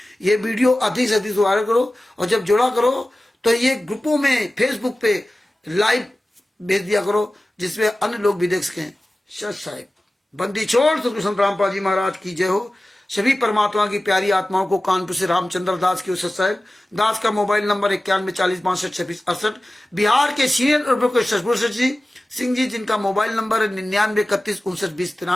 ये वीडियो अधिक से अधिक वायरल करो, और जब जोड़ा करो तो ये ग्रुपों में फेसबुक पे लाइव भेज दिया करो, जिसमें अन्य लोग भी देख सकें। सत साहिब। बंदी छोड़ सतगुरु संत रामपाल जी महाराज की जय हो। सभी परमात्मा की प्यारी आत्माओं को कानपुर से रामचंद्र दास की सत साहिब। दास का मोबाइल नंबर 9140652668। बिहार के सीनियर एडवोकेट सतगुरु जी सिंह जी, जिनका मोबाइल नंबर है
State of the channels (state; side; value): normal; both; correlation 0.96